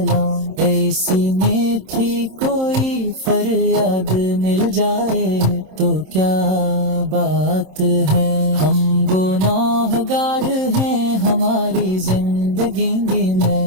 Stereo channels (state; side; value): late; left; 27 ms